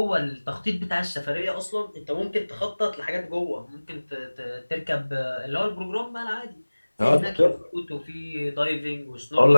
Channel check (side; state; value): both; inverted; correlation -1.00